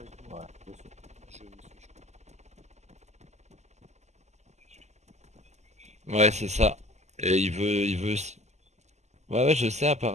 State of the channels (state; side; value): late; left; 0.33 ms